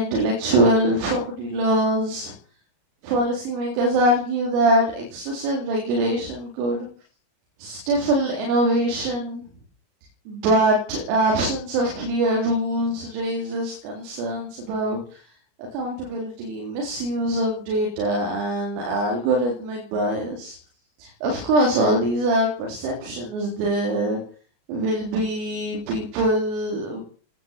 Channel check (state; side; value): late; left; 33 ms